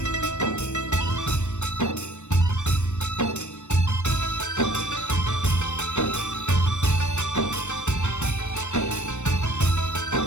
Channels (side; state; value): right; late; 0.84 ms